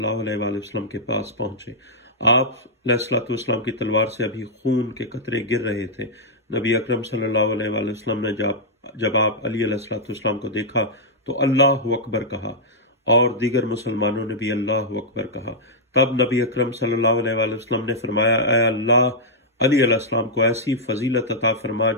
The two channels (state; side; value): normal; both; correlation -0.08